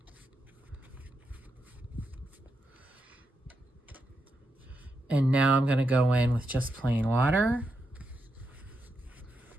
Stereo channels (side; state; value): both; normal; correlation 0.84